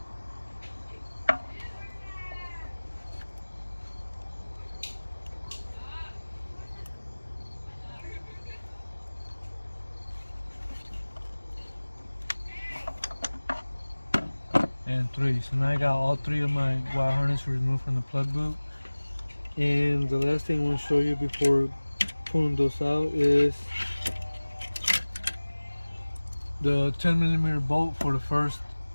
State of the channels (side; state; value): both; inverted; correlation -1.00